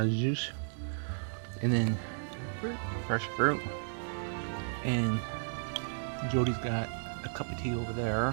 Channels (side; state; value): left; silent; 55 dB below the other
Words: then fruit, fresh fruit. And Jody's got a cup of tea over